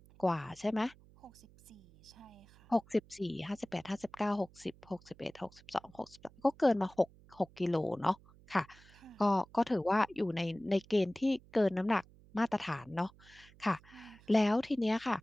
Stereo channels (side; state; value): right; noise; hum, 25 dB below the sound